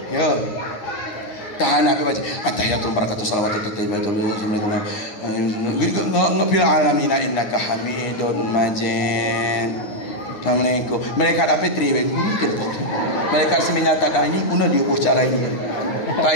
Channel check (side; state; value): right; late; 9.7 ms